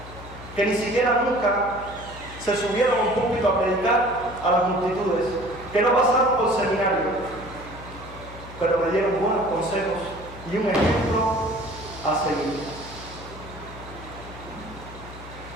que ni siquiera nunca se subieron a un púlpito a predicar a las multitudes, que no pasaron por seminario, pero me dieron buenos consejos y un ejemplo a seguir.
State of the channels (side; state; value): left; noise; hum, 15 dB below the sound